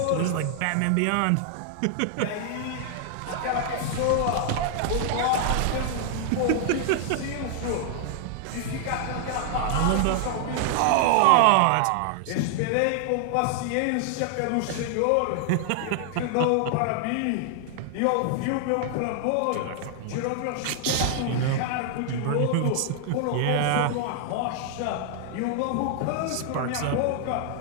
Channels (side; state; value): both; different; correlation 0.00